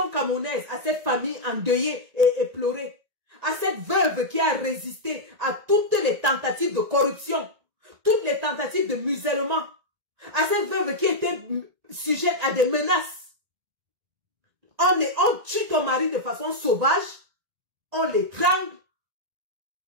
camerounaise, à cette famille endeuillée et éplorée, à cette veuve qui a résisté à toutes les tentatives de corruption, toutes les tentatives de musellement, à cette veuve qui était sujette à des menaces. On tue ton mari de façon sauvage, on l'étrangle,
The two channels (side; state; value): left; late; 1.9 ms